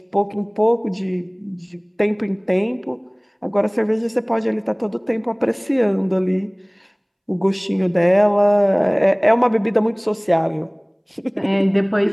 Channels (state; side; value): identical; both; correlation 1.00